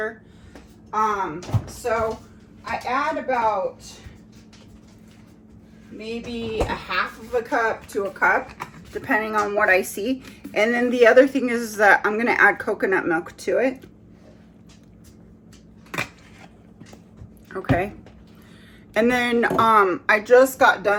So I add about maybe a half of a cup to a cup, depending on what I see. And then the other thing is that I'm going to add coconut milk to it. Okay, and then I just got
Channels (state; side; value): identical; both; correlation 1.00